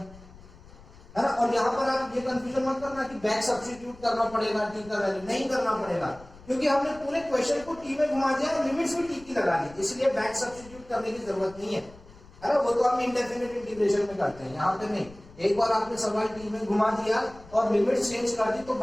है ना। और यहाँ पर आप ये कंफ्यूजन मत करना कि बैक सब्स्टिट्यूट करना पड़ेगा t का वैल्यू, नहीं करना पड़ेगा क्योंकि हमने पूरे क्वेश्चन को t में घुमा दिया और लिमिट्स भी t की लगा दी, इसलिए बैक सब्स्टिट्यूट करने की जरूरत नहीं है ना। वो तो हम इंडेफिनिट इंटीग्रेशन में करते हैं, यहाँ पे नहीं। एक बार आपने सवाल t में घुमा दिया और लिमिट्स चेंज कर दी तो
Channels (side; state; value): left; noise; rumble, 21 dB below the sound